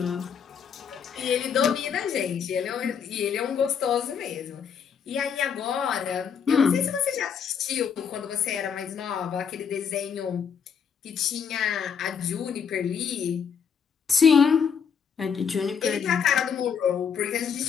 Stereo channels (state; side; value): quieter; right; 7.0 dB